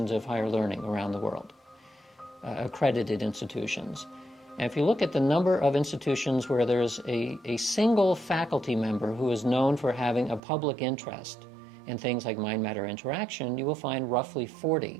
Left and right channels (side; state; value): left; drops out; at 10.4 s